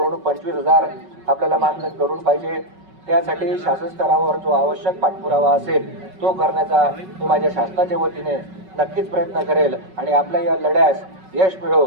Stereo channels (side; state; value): left; late; 5.3 ms